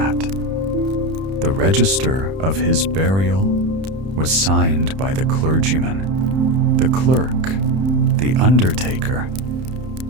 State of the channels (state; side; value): late; left; 31 ms